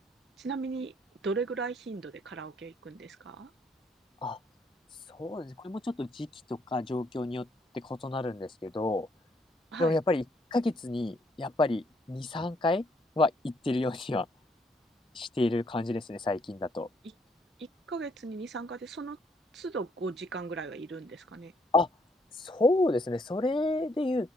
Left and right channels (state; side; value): normal; both; correlation 0.69